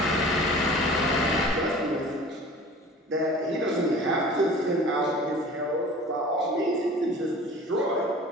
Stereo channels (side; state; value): both; normal; correlation 0.42